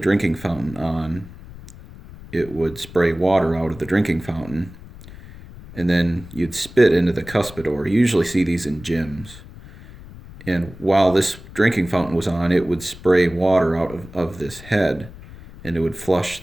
fountain on, it would spray water out of the drinking fountain, and then you'd spit into the cuspidor. You usually see these in gyms. And while this drinking fountain was on, it would spray water out of this head, and it would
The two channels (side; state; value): left; noise; rumble, 17 dB below the sound